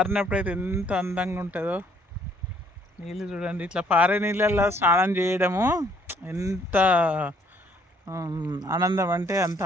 అయితే ఎంత అందంగా ఉంటుందో. నీళ్ళు చూడండి, ఇట్లా పారే నీళ్ళల్లో స్నానం చేయడము ఎంత ఆనందం అంటే అంత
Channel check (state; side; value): normal; both; correlation 0.64